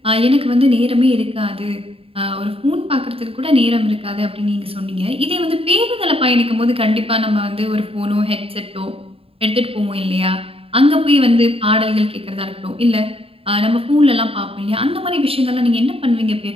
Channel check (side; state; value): left; late; 0.27 ms